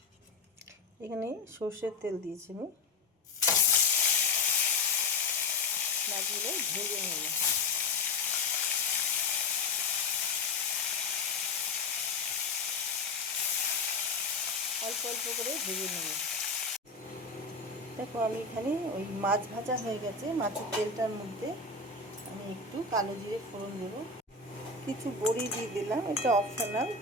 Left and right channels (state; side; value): quieter; right; 4.1 dB